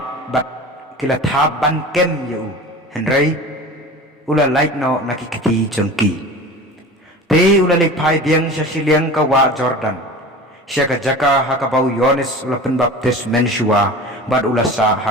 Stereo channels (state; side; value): normal; both; correlation 0.36